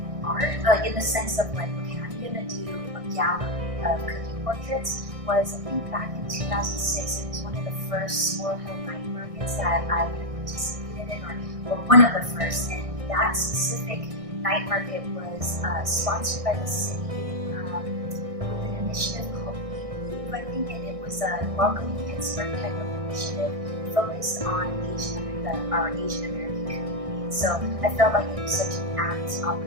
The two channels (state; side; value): late; left; 1.6 ms